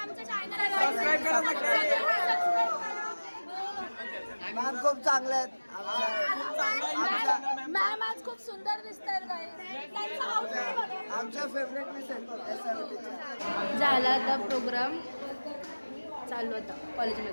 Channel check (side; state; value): both; inverted; correlation -1.00